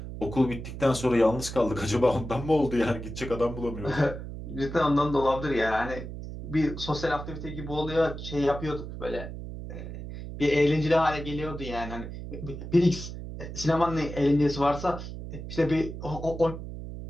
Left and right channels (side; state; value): right; noise; hum, 9 dB below the sound